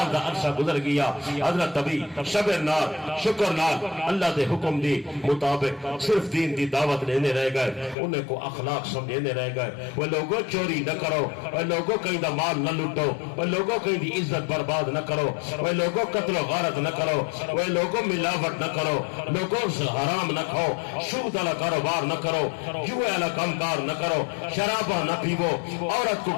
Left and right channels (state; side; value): drops out; right; at 8.0 s